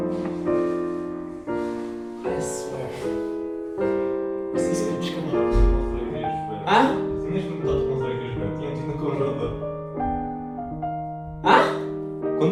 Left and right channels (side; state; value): both; identical; correlation 1.00